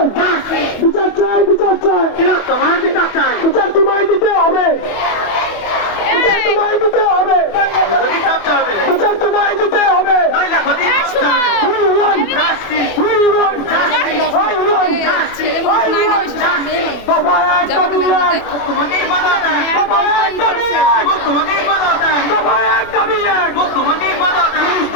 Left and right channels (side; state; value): right; late; 25 ms